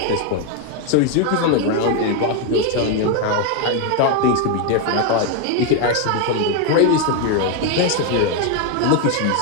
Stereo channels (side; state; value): both; different; correlation 0.01